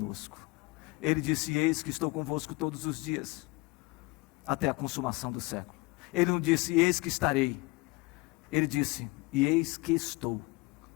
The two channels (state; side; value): quieter; right; 24.1 dB